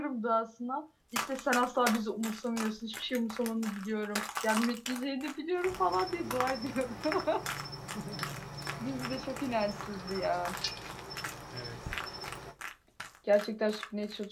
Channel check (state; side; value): identical; both; correlation 1.00